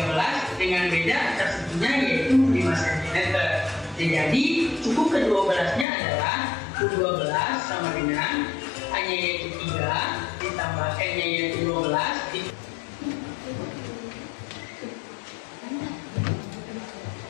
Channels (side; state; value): right; drops out; at 5.9 s